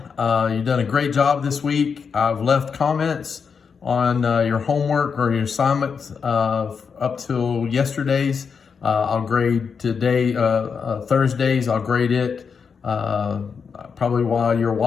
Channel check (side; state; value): right; quieter; 6.0 dB